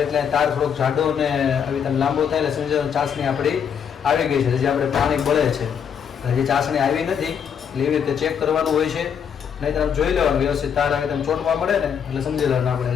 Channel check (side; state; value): right; quieter; 7.7 dB